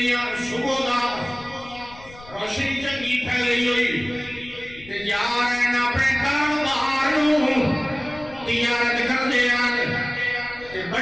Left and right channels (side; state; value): left; noise; rumble, 20 dB below the sound